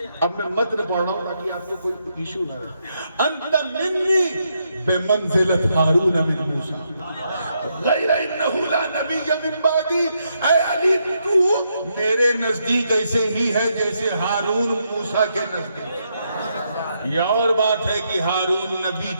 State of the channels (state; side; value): inverted; both; correlation -0.79